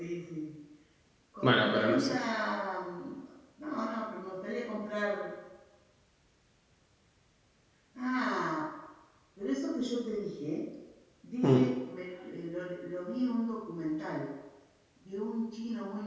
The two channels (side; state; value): both; identical; correlation 1.00